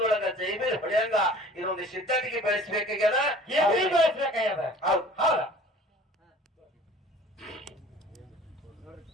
ಜೈಬೀರ್ ಹೊಡೆಯಂಗ ಇದೊಂದು ಸಿದ್ಧಟಿಗೆ ಬೆಳೆಸ್ಬೇಕಾಗ್ಯದ. ಬೆಳೆಸ್ಬೇಕಾಗ್ಯದ. ಹೌದು. ಹೌದ.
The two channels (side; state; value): both; normal; correlation 0.47